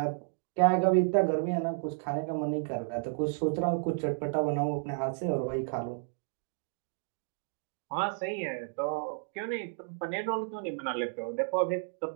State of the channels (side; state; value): left; silent; digital silence